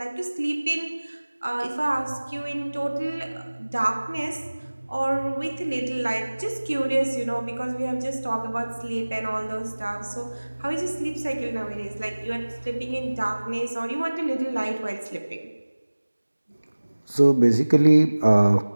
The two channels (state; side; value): inverted; both; correlation -1.00